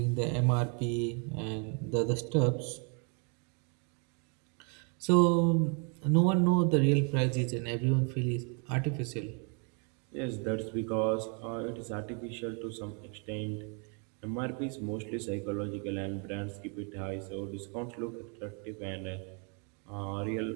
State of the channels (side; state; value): left; quieter; 37.7 dB